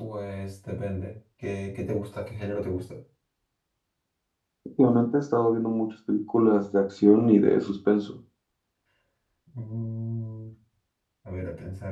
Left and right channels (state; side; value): identical; both; correlation 1.00